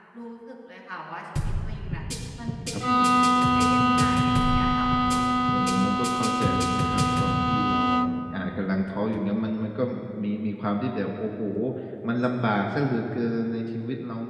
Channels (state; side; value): identical; both; correlation 1.00